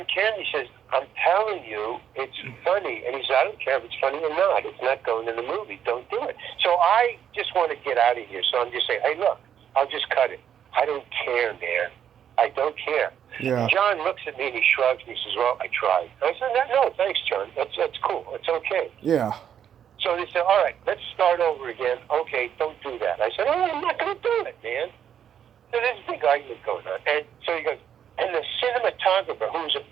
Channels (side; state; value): left; quieter; 9.1 dB